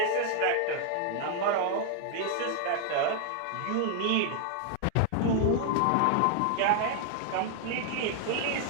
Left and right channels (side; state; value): both; different; correlation 0.00